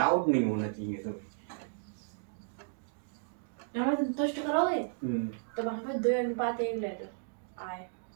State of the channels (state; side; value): silent; left; digital silence